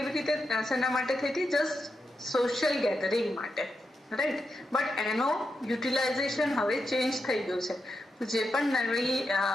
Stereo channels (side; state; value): both; normal; correlation 0.86